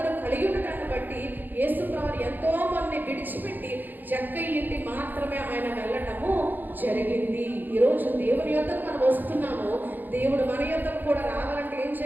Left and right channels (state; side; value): late; left; 0.087 ms